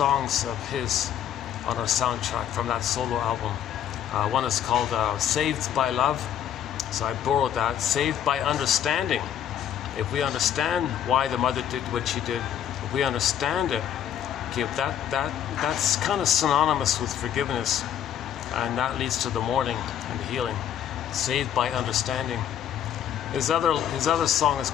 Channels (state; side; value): quieter; right; 10.0 dB